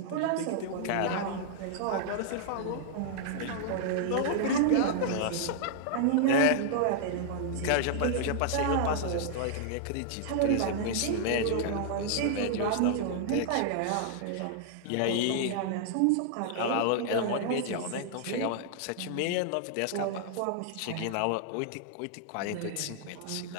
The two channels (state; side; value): different; both; correlation -0.01